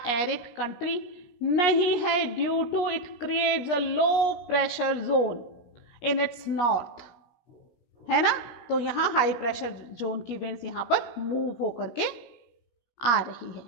एरिड कंट्री नहीं है, due to it creates a low pressure zone in its north, है ना। तो यहाँ हाई प्रेशर जोन की विंड्स यहाँ पर मूव होकर के आ रही है।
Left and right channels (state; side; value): late; right; 17 ms